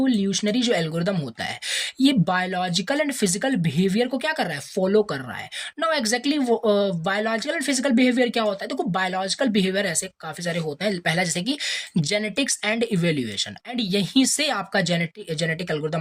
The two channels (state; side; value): identical; both; correlation 1.00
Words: जो एल्गोरिथम होता है ये बायोलॉजिकल एंड फिजिकल बिहेवियर को क्या कर रहा है, फॉलो कर रहा है। Now exactly biological and physical behaviour क्या होता है, देखो बायोलॉजिकल बिहेवियर ऐसे काफी सारे होते हैं। पहला जैसे कि जेनेटिक्स एंड इवोल्यूशन, एंड यहीं से आपका जेनेटिक